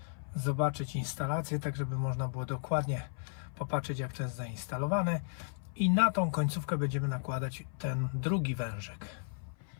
zobaczyć instalację, tak żeby można było dokładnie popatrzeć, jak to jest zainstalowane. I na tą końcówkę będziemy nakładać ten drugi wężyk.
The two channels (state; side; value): silent; right; 55 dB below the other